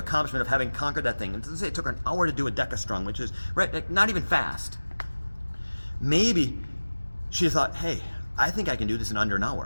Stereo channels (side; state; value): both; inverted; correlation -1.00